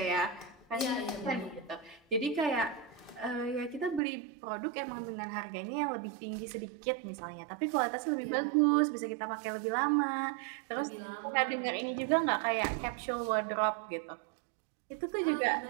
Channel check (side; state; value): left; drops out; at 4.0 s